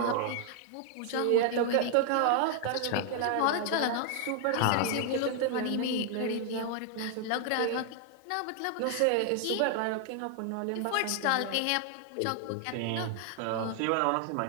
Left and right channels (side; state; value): both; different; correlation 0.00